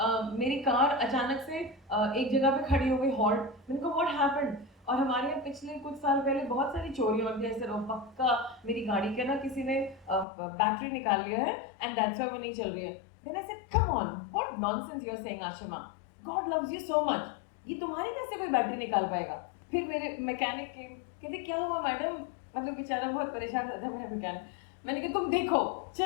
मेरी कार अचानक से एक जगह पे खड़ी हो गई, हॉल्ट। मैंने कहा व्हाट हैपेंड। और हमारे यहाँ पिछले कुछ साल पहले बहुत सारी चोरियां होती है, ऐसे पक्का मेरी गाड़ी के ना किसी ने बैटरी निकाल लिया है एंड दैट्स व्हाई वो नहीं चल रही है। Then I said come on, what nonsense you are saying Ashima, God loves you so much, ये तुम्हारी कैसे कोई बैटरी निकाल पाएगा। फिर मेरे मैकेनिक के कहते क्या हुआ मैडम, मतलब बेचारा बहुत परेशान था मेरा मैकेनिक। मैंने कहा तुम देखो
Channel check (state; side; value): drops out; right; at 10.2 s